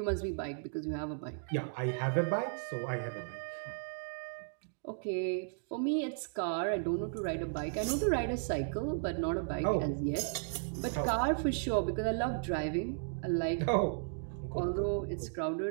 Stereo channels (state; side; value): silent; left; digital silence